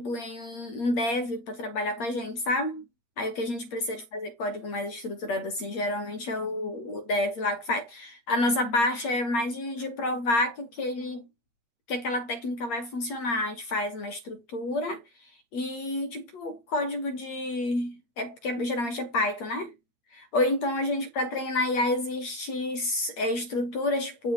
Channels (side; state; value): right; late; 8.5 ms